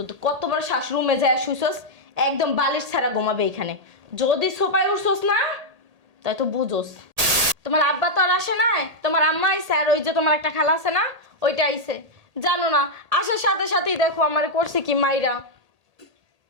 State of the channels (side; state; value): left; late; 1.8 ms